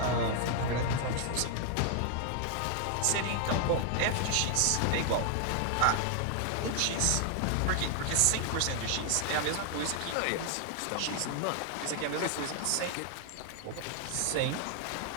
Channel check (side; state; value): both; different; correlation 0.00